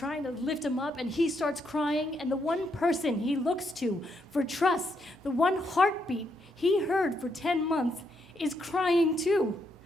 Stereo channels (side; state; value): both; normal; correlation 0.77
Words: to lift him up, and he starts crying, and the one person he looks to for trust, the one heartbeat he heard for 10 months is crying too.